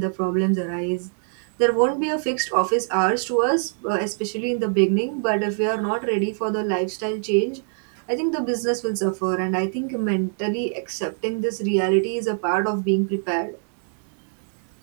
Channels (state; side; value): silent; left; digital silence